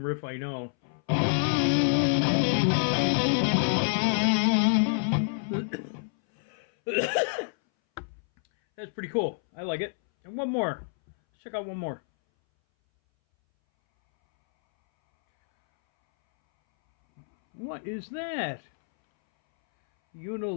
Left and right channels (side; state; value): right; silent; 60 dB below the other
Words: riff I know. That's pretty cool. I like it. And one more. Let's check out one more. What is that?